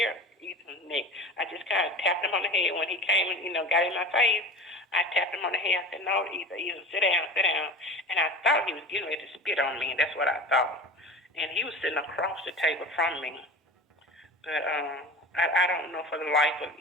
Ethan's neck. I just kind of tapped him on the head when he came and got in my face. I tapped him on the head. I said, "No, Ethan, sit down, sit down." And I thought he was getting ready to spit on me, and that's what I thought. And he was sitting across the table from me. But I don't know for the life of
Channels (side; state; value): both; normal; correlation 0.36